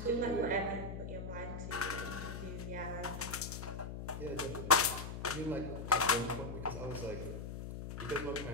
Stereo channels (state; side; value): noise; left; hum, 7 dB below the sound